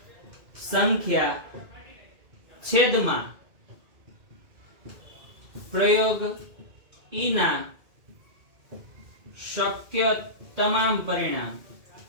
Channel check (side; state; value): left; late; 2.2 ms